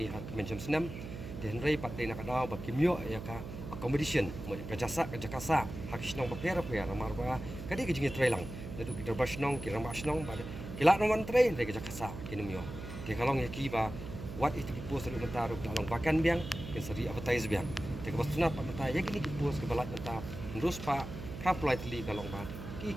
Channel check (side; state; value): right; noise; hum, 9 dB below the sound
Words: hat menjam snam de henry pat de nakadaw ba kimyo ya ka accommodation mo ka jakasa hakish nong bo per mar ba kadi ki jingi trailang itu kita basnong kira basnong pada kila nomor train dari jakasa kinumyo ke kalong ya kiba what itu ki post lu mentaru kalong bakan biang ke seri advertise biang te ke bastuna pa mata ya kini ki post ke balat mata terus pa politely kalong ba ki